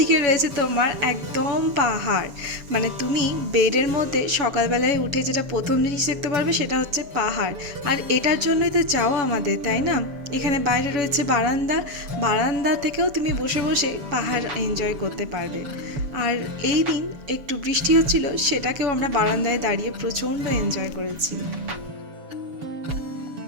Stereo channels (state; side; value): late; left; 7.0 ms